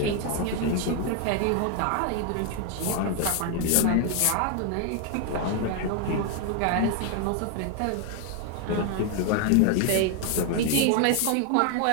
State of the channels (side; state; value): both; different; correlation 0.01